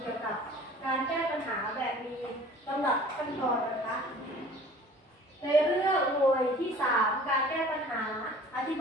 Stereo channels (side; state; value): both; normal; correlation 0.47